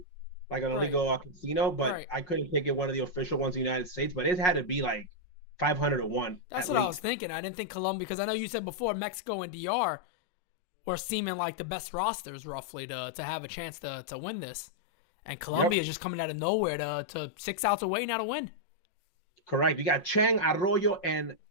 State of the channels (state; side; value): late; right; 5.5 ms